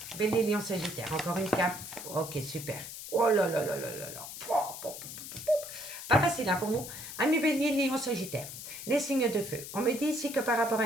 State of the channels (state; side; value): noise; left; hiss, 10 dB below the sound